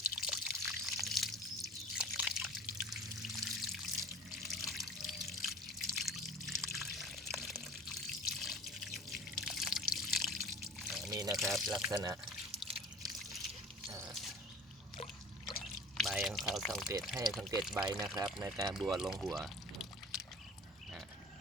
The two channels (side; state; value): both; normal; correlation 0.41